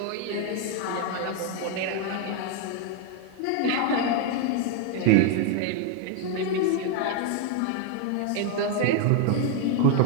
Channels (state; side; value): different; both; correlation 0.01